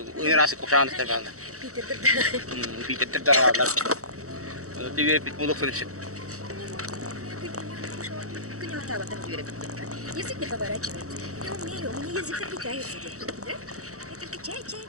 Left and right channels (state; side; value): late; left; 0.65 ms